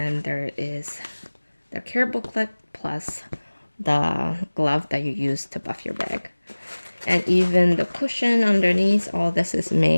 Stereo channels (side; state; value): both; inverted; correlation -1.00